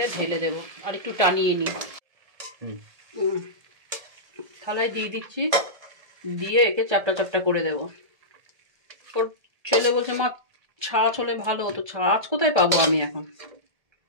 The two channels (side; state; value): left; late; 1.7 ms